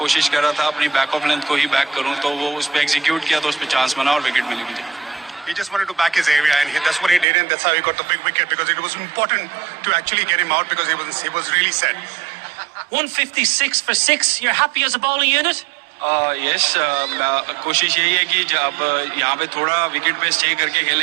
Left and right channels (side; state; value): left; drops out; at 7.2 s